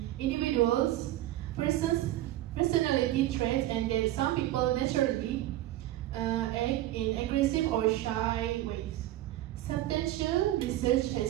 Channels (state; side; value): quieter; left; 14.9 dB